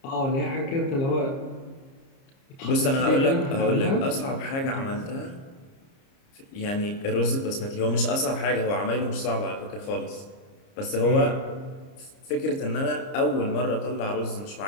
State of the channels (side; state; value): right; late; 30 ms